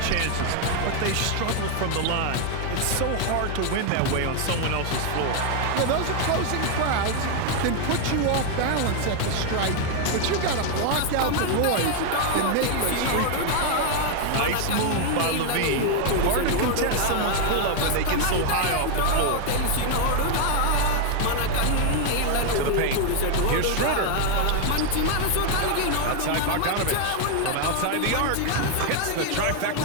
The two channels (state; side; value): different; both; correlation 0.00